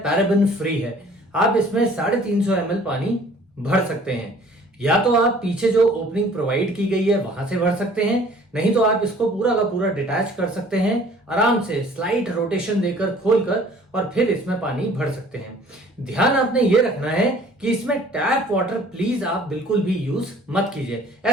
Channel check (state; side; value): normal; both; correlation 0.52